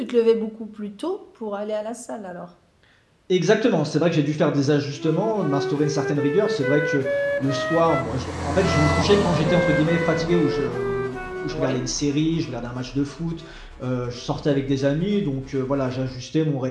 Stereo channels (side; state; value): both; identical; correlation 1.00